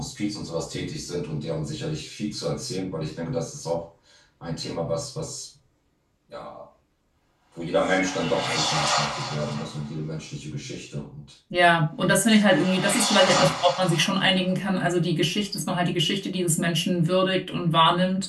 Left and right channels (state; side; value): identical; both; correlation 1.00